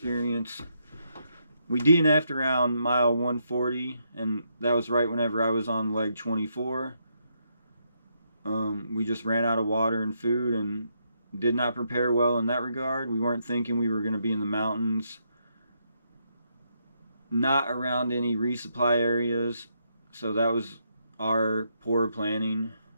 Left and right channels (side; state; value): both; inverted; correlation -0.78